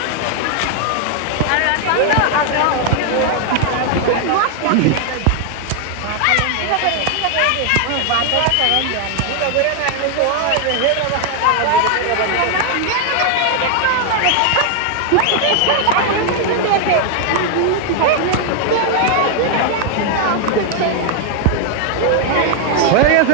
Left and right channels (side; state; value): both; different; correlation 0.00